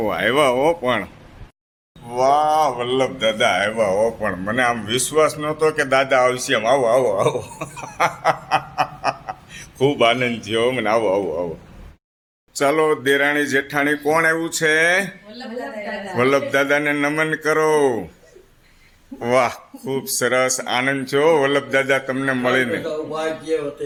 આવ્યા હો પણ વાહ વલ્લભ દાદા આવ્યા હો પણ મને આમ વિશ્વાસ નહોતો કે દાદા આવશે એમ આવો આવો આવો ખૂબ આનંદ થયો મને આવો આવો આવો ચાલો દેરાણી જેઠાણી કોણ આવ્યું છે વલ્લભ દાદાને નમન કરો વાહ ખૂબ સરસ આનંદ છો વલ્લભ દાદા તમને મળીને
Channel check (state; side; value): identical; both; correlation 1.00